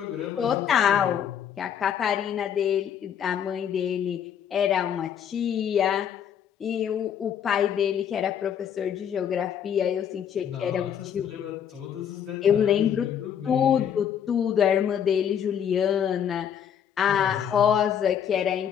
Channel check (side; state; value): right; quieter; 8.7 dB